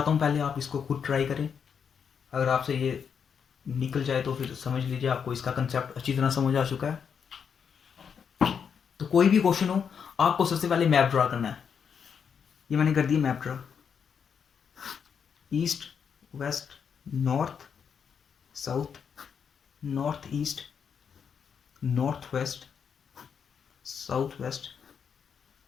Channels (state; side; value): quieter; right; 7.0 dB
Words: हूँ पहले आप इसको खुद ट्राई करें, अगर आपसे ये निकल जाए तो फिर समझ लीजिए आपको इसका कंसेप्ट अच्छी तरह समझ आ चुका है। तो कोई भी क्वेश्चन हो, आपको सबसे पहले मैप ड्रा करना है। ये मैंने कर दिया map draw, east west north south, north east north west south west